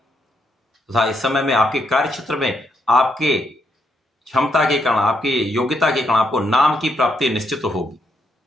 इस समय में आपके कार्य क्षेत्र में आपके क्षमता के कारण, आपकी योग्यता के कारण आपको नाम की प्राप्ति निश्चित होगी।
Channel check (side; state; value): both; normal; correlation 0.77